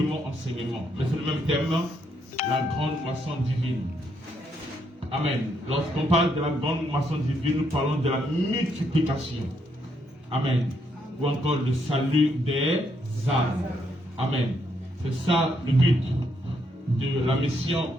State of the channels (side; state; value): both; normal; correlation 0.75